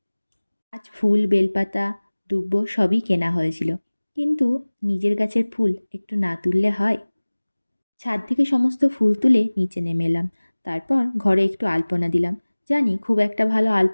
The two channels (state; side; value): inverted; both; correlation -1.00